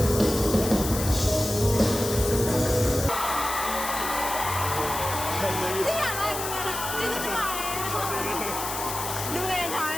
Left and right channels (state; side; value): noise; left; hiss, 5 dB below the sound